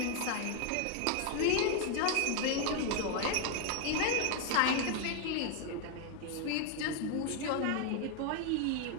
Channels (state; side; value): different; both; correlation 0.00